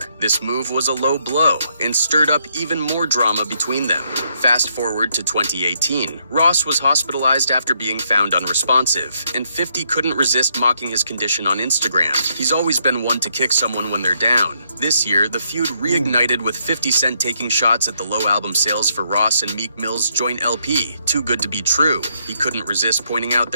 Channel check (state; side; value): inverted; both; correlation -0.75